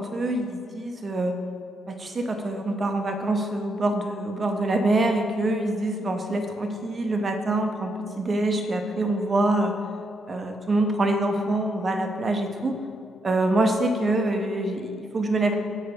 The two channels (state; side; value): normal; both; correlation 0.79